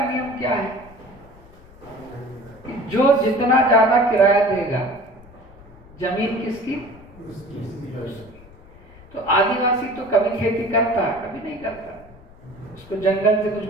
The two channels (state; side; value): noise; left; rumble, 22 dB below the sound